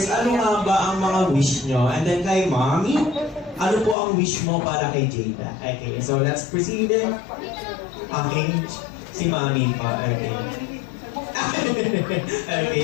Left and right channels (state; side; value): drops out; right; at 4.0 s